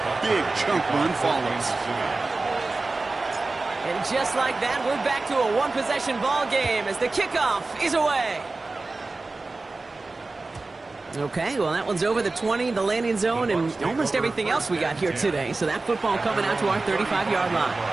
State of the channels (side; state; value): left; quieter; 3.4 dB